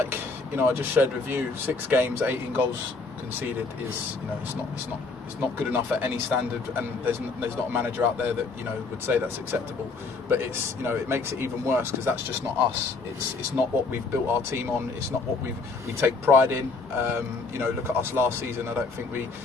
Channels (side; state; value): right; quieter; 4.0 dB